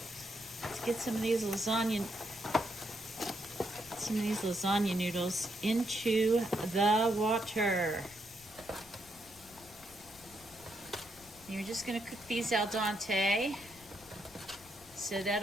Let's get some of these lasagna noodles into the water. You're just gonna cook these al dente. So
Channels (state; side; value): noise; left; rumble, 23 dB below the sound